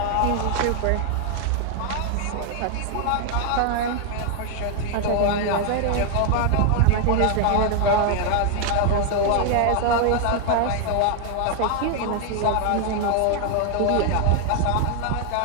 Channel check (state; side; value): different; both; correlation 0.00